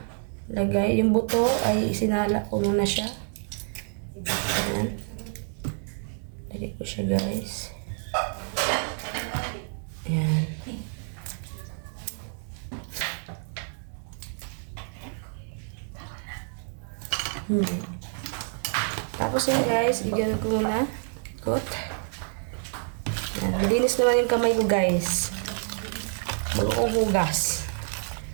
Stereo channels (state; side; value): silent; left; 59 dB below the other